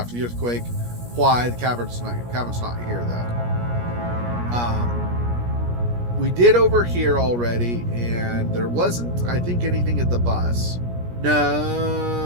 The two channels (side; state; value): left; late; 17 ms